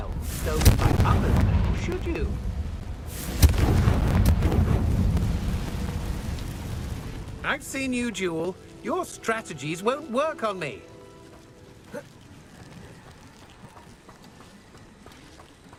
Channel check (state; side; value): identical; both; correlation 1.00